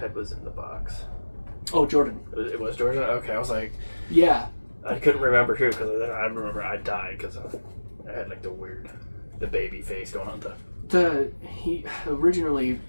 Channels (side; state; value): both; inverted; correlation -1.00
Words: was in the box? Oh, Jordan. It was Jordan? Okay, I was like... Yeah. I couldn't remember who, because I remember I died because I had like the baby face going on. He originally,